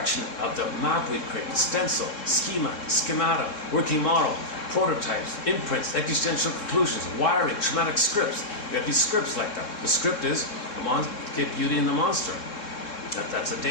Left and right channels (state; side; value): late; right; 3.7 ms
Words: of the map we create, the stencil, schemata, working model, prototypes, imprints, existential conclusions, wiring, traumatic scripts. You have these scripts like that. The script is get beauty in the monster. That's a